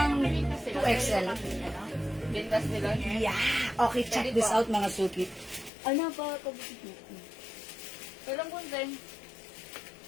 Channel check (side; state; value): right; drops out; at 5.7 s